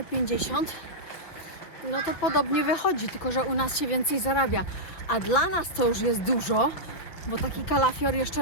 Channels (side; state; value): right; late; 6.1 ms